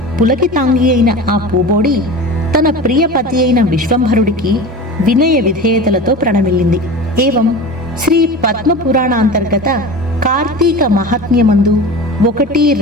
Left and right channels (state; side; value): normal; both; correlation 0.32